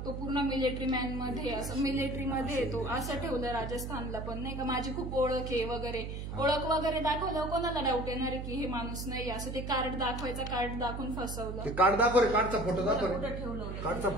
तो पूर्ण मिलिटरी मॅन मध्ये, असं मिलिटरीमध्ये येतो असं ठेवलं राजस्थानला पण नाही का. माझी खूप ओळख आहे वगैरे, ओळख वगैरे दाखवलं, कोणाला डाऊट येणार आहे की हे माणूस नाही असं. ते कार्ड दाखवायचं, कार्ड दाखवून फसवलं. ते कार्ड दाखव रे, कार्डचा फोटो दाखव रे, कुठं ठेवलं होतं कार्डचा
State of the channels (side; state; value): right; noise; hum, 6 dB below the sound